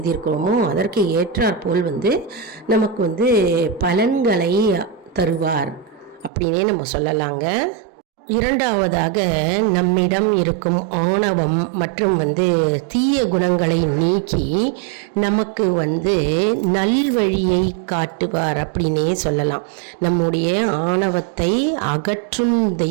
அதற்கு ஏற்றாற்போல் நமக்கு பலன்களை தருவார் அப்படின்னே நம்ம சொல்லலாங்க. இரண்டாவதாக, நம்மிடம் இருக்கும் ஆணவம் மற்றும் தீய குணங்களை நீக்கி நமக்கு நல்வழியை காட்டுவார் அப்படின்னே சொல்லலாம். நம்முடைய ஆணவத்தை அகற்றும்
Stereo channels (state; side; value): drops out; left; at 6.3 s